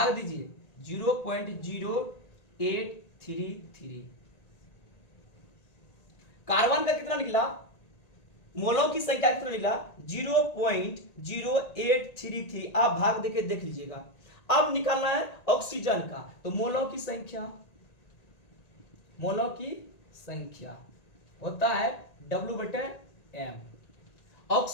दीजिए 0.0833। कार्बन का कितना निकला, मोलों की संख्या कितना निकला 0.0833। आप भाग देके देख लीजिएगा। अब निकालना है ऑक्सीजन का, तो मोलों की संख्या, मोलों की संख्या होता है W/M।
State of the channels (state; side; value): late; right; 1.9 ms